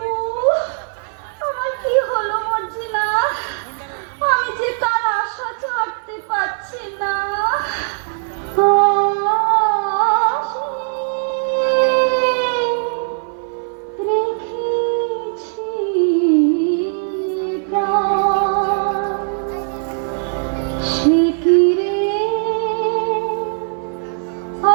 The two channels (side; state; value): left; silent; 55 dB below the other